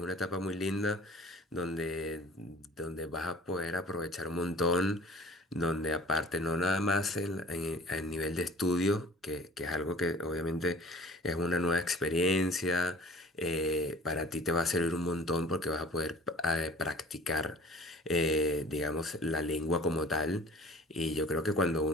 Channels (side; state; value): both; normal; correlation 0.47